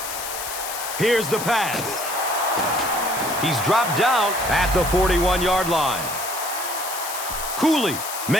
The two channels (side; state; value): left; noise; hiss, 7 dB below the sound